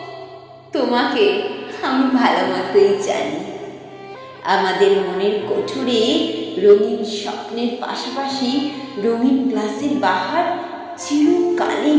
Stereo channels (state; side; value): identical; both; correlation 1.00